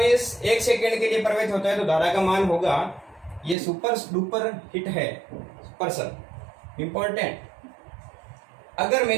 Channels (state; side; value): drops out; left; at 3.6 s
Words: 1 सेकंड के लिए प्रवाहित होता है तो धारा का मान होगा, ये सुपर डुपर हिट है पर्सन इंपॉर्टेंट। अगर